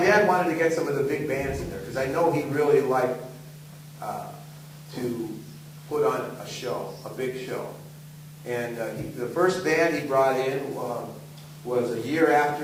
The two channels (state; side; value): identical; both; correlation 1.00